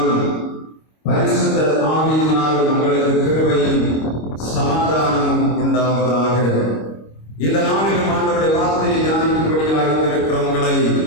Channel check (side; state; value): right; late; 25 ms